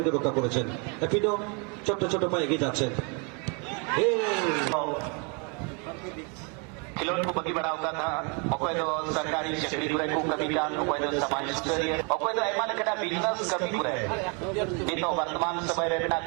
রক্ষা করেছেন। এপিনো ছোট্ট ছোট পায়ে এগিয়ে যাচ্ছেন। खिलौन को बगी बढ़ाता था अकोय तो सरकारी चाकरी करे को कभी जान अकोय तो समाज स्तरीय अकोय तो एमा लेकटा बिजनेस कभी करे नहीं तो वर्तमान समय रे ना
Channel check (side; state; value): left; quieter; 34.6 dB